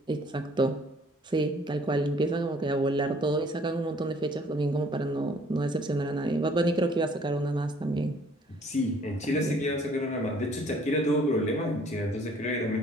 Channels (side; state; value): both; normal; correlation 0.58